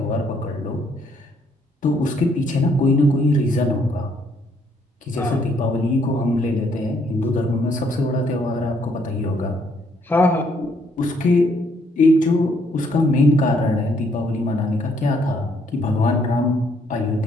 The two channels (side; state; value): both; normal; correlation 0.69